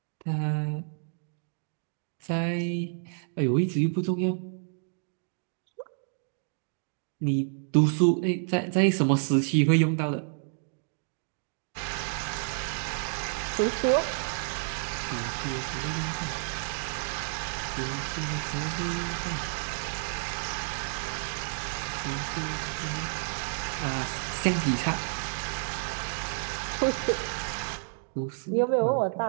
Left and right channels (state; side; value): silent; left; digital silence